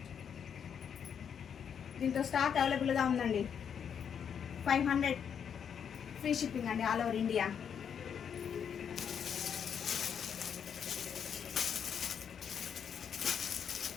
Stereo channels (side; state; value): right; quieter; 7.7 dB